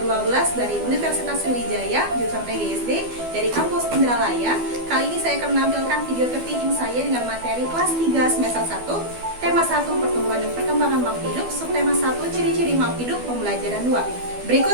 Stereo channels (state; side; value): late; left; 12 ms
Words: 12 dari Universitas Sriwijaya, jurusan PGSD dari kampus Indralaya. Kali ini saya akan menampilkan video tertinggi saya dengan materi kelas 3 semester 1, tema 1 pertumbuhan dan perkembangan makhluk hidup, subtema 1 ciri-ciri makhluk hidup, pembelajaran 2.